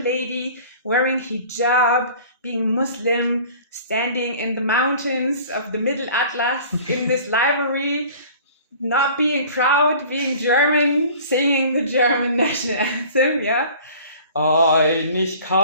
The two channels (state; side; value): inverted; both; correlation -0.46